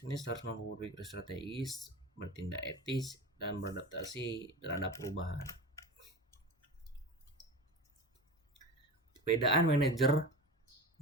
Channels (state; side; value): normal; both; correlation 0.30